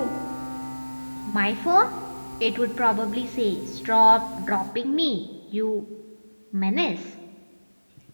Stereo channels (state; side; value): inverted; both; correlation -1.00